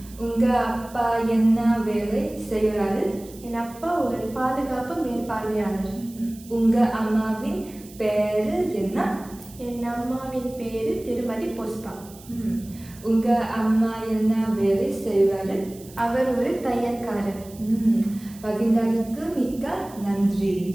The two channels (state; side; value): noise; right; hiss, 21 dB below the sound